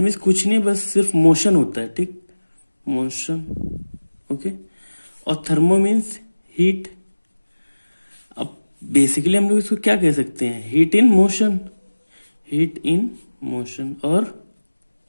कुछ नहीं, बस सिर्फ मोशन होता है। ठीक, मोशन। ओके, और थर्मो मीन्स हीट। अब बेसिकली हम लोग इसको क्या कह सकते हैं? Heat in motion. Heat in motion और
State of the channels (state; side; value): inverted; both; correlation -1.00